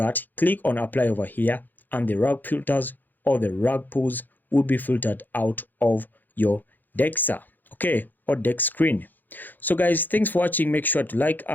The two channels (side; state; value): right; late; 0.087 ms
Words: click on apply over here, and the rug filters or the Rugpulls will be filtered out of your Dexa, okay, or Dexscreen. So guys, thanks for watching. Make sure to like